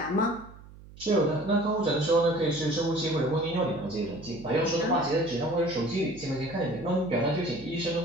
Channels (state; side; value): noise; right; hum, 19 dB below the sound